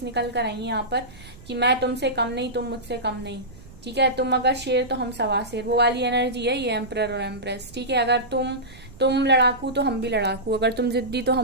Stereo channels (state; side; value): noise; right; rumble, 20 dB below the sound